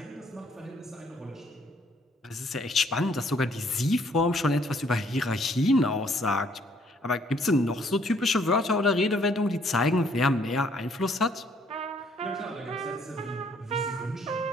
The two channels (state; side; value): normal; both; correlation 0.65